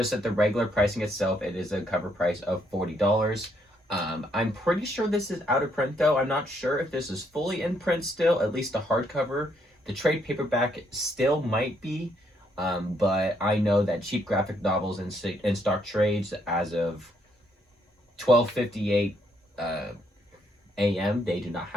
at the regular pricing itself, it is a cover price of $40. I'm pretty sure this is out of print though. I'm not sure if this is fully in print still, at least a hardcover. The trade paperback still might be, but I know that Cheap Graphic Novels in stock trades as of 12:58 a.m. they do not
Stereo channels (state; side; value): normal; both; correlation 0.72